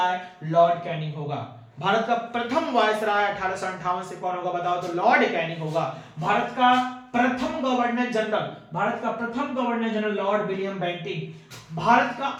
लॉर्ड कैनिंग होगा। भारत का प्रथम वायसराय 1858 से कौन होगा बताओ, तो लॉर्ड कैनिंग होगा। भारत का प्रथम governor general lord William Bentinck. Bharat का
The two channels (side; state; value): both; identical; correlation 1.00